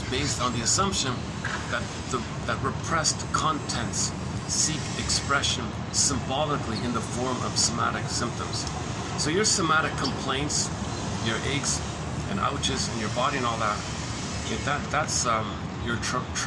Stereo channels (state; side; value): identical; both; correlation 1.00